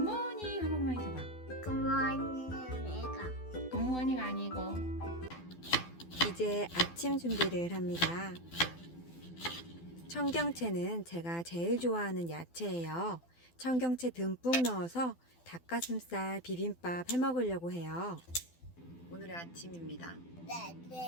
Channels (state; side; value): late; right; 12 ms